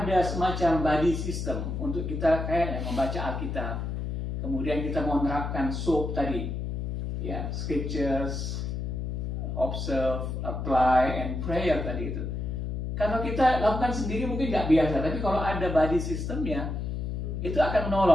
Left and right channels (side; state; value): left; noise; hum, 3 dB below the sound